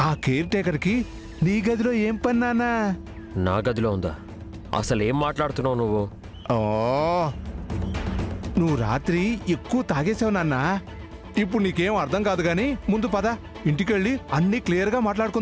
ఆ కేర్ టేకర్కి నీ గదిలో ఏం పని నానా? నా గదిలో ఉందా? అసలు ఏం మాట్లాడుతున్నావు నువ్వు? ఓ నువ్వు రాత్రి ఎక్కువ తాగేసావు నాన్న. ఇప్పుడు నీకేం అర్థం కాదు గాని ముందు పద, ఇంటికెళ్ళి అన్నీ క్లియర్గా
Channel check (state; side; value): identical; both; correlation 1.00